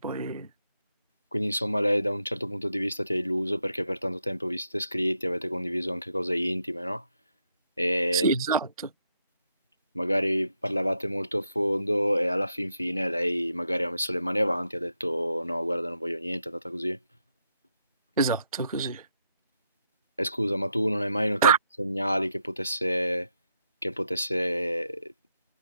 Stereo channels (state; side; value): inverted; both; correlation -0.80